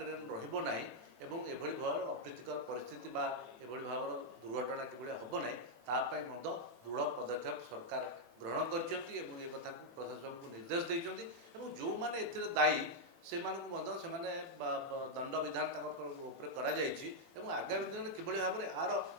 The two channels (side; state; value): left; late; 18 ms